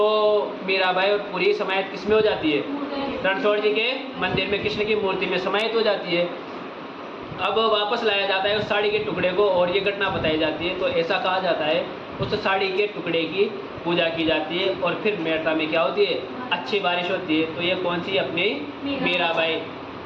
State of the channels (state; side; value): identical; both; correlation 1.00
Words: मीराबाई और पूरी समाहित किस में हो जाती है, रणछोड़ जी के मंदिर में कृष्ण की मूर्ति में समाहित हो जाती है। अब वापस लाया जाता है उस साड़ी के टुकड़े को और ये घटना बताई जाती है। तो ऐसा कहा जाता है उस साड़ी के टुकड़े की पूजा की जाती है और फिर मेड़ता में क्या होती है, अच्छी बारिश होती है। तो ये कौन सी, अपनी मीराबाई।